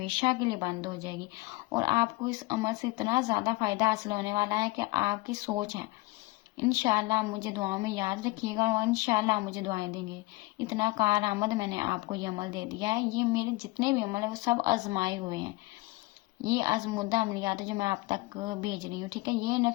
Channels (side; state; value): right; quieter; 21.7 dB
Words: के लिए बंद हो जाएगी और आपको इस अमल से इतना ज़्यादा फ़ायदा हासिल होने वाला है कि आपकी सोच है। इंशाल्लाह आप मुझे दुआओं में याद रखिएगा और इंशाल्लाह आप मुझे दुआएं देंगे। इतना कारआमद मैंने आपको ये अमल दे दिया है। ये मेरे जितने भी अमल है वो सब आजमाए हुए हैं, ये आजमुदा अमलियात है जो मैं आप तक भेज रही हूँ। ठीक है, ये